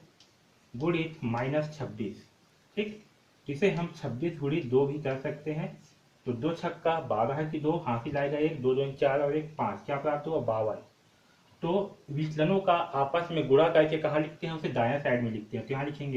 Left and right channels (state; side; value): identical; both; correlation 1.00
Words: गुणित -26, ठीक। इसे हम 26 गुणित 2 भी कर सकते हैं। तो 2 छक्का 12 की 2, हासिल आएगा 1, 2 2 4 और 1 5, क्या प्राप्त हुआ, 52। तो विचलनों का आपस में गुणा करके कहाँ लिखते हैं, उसे दायां साइड में लिखते हैं। तो यहाँ